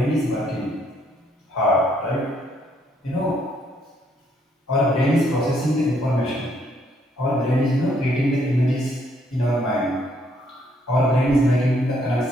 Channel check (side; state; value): both; normal; correlation 0.70